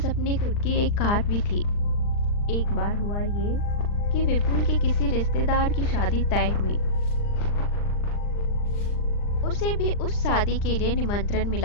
अपनी खुद की एक कार भी थी। एक बार हुआ ये कि विपुल के किसी रिश्तेदार की शादी तय हुई। उसे भी उस शादी के लिए निमंत्रण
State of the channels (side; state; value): right; late; 39 ms